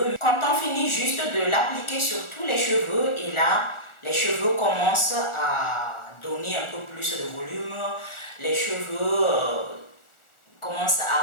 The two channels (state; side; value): late; right; 1.4 ms